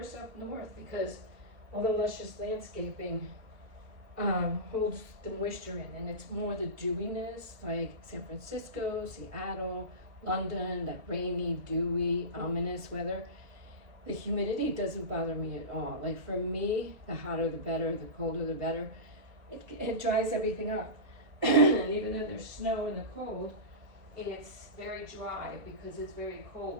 up north, because all the luscious landscaping holds the moisture in, and it's more the dewiness, like San Francisco, Seattle, London, that rainy, dewy, ominous weather. The humidity doesn't bother me at all. Like for me, the hotter the better, the colder the better. It dries everything up. And even though there's snow in the cold, it's very dry because it's very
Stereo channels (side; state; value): left; late; 2.1 ms